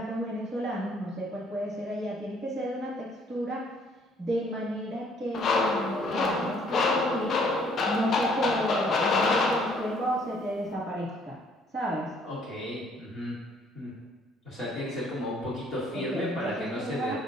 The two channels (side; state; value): both; normal; correlation 0.63